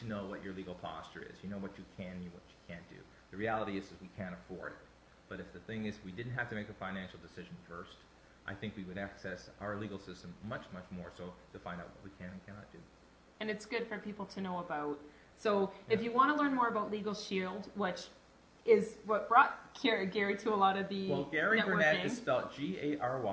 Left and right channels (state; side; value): identical; both; correlation 1.00